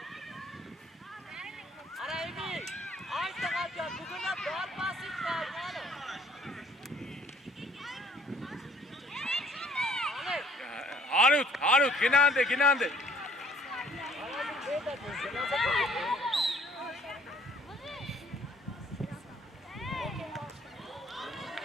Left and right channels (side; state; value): both; normal; correlation 0.59